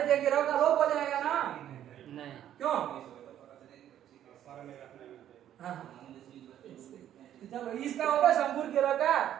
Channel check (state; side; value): quieter; left; 11.1 dB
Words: के रो का लोप हो जाएगा ना? नहीं। क्यों? हाँ, चलो इसका होगा शंभुर के रो का।